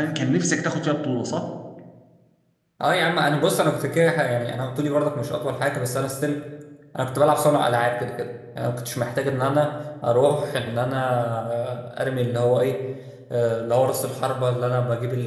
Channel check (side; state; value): both; identical; correlation 1.00